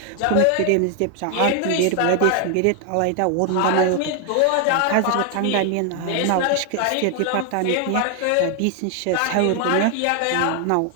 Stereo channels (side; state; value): both; different; correlation 0.00